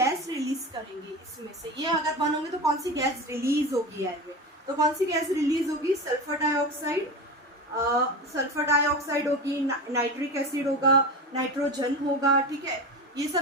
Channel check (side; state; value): both; normal; correlation 0.26